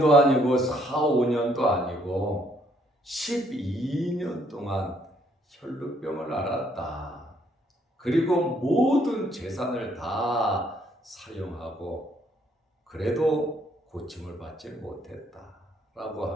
아니고 4, 5년도 아니고 12년 동안 혈루병을 앓았다. 그리고 모든 재산을 다 사용하고 그래도 고침을 받지 못했다라고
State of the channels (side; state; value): both; normal; correlation 0.68